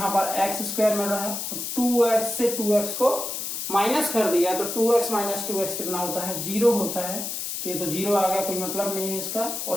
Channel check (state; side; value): noise; left; hiss, 4 dB below the sound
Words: पर x² मिल रहा है, 2x से 2x को माइनस कर दिया तो 2x माइनस 2x कितना होता है? 0 होता है। तो ये तो 0 आ गया, कोई मतलब नहीं है इसका।